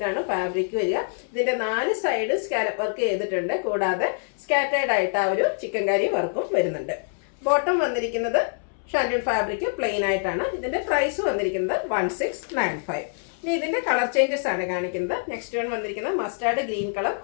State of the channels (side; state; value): right; silent; 62 dB below the other